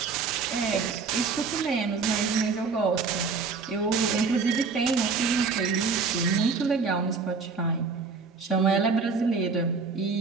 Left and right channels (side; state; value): left; quieter; 4.8 dB